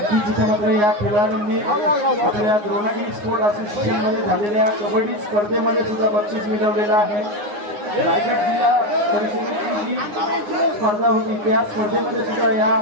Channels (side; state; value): left; late; 9.6 ms